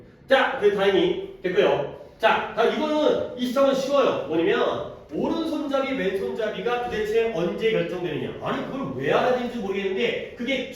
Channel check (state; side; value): identical; both; correlation 1.00